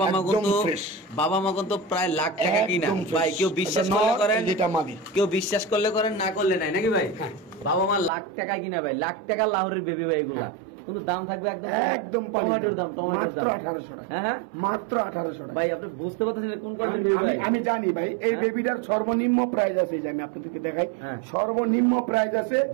মা একদম কিন্তু fresh। বাবা মা কিন্তু প্রায় লাখ টাকা কিনা একদম fresh। ভাই, কেউ বিশ্বাস এটা করলে নর, করেন, যেটা মাদি। কেউ বিশ্বাস করলে করেন, না করলে নাই নাকি ভাই? হ্যাঁ। বাবা মা লাখ টাকা কিনা ভাই, লাখ টাকা লাহোরের বেবি ভাই এগুলা, কিন্তু দাম থাকবে একদম একদম টমেটোর দাম, টমেটোর দাম মাত্র 1800 টাকা। হ্যাঁ হ্যাঁ মাত্র 1800 টাকা। ভাই আপনি বুঝতে পারতেছেন এটা কোন কোয়ালিটির বেবি ভাই? আমি জানি ভাই, এই হ্যাঁ? বেবিটার সর্বনিম্ন প্রাইস আছে, এই যে আমি আপনাদেরকে দেখাই, হ্যাঁ। সর্বনিম্ন প্রাইস আছে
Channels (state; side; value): drops out; left; at 8.1 s